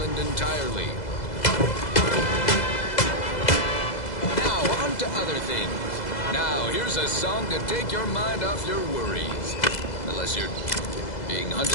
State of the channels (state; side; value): late; right; 2.0 ms